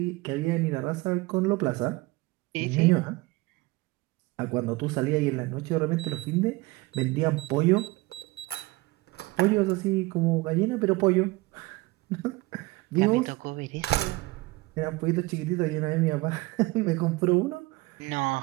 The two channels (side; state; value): left; quieter; 21.9 dB